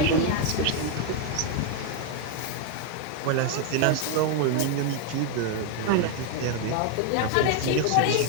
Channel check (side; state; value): both; different; correlation 0.01